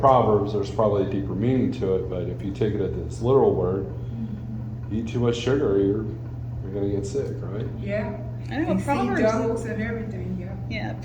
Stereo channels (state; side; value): identical; both; correlation 1.00